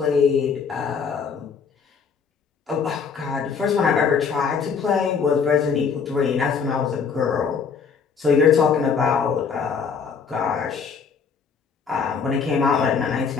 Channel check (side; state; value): right; quieter; 6.0 dB